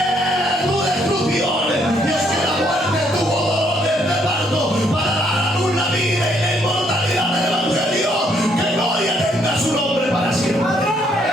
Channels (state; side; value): normal; both; correlation 0.70